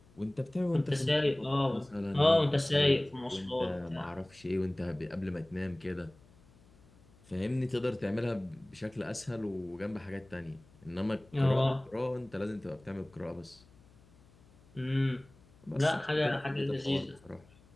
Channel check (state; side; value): noise; left; hum, 27 dB below the sound